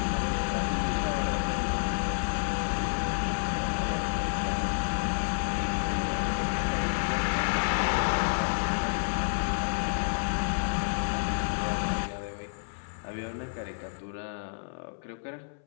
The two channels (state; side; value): silent; right; 58 dB below the other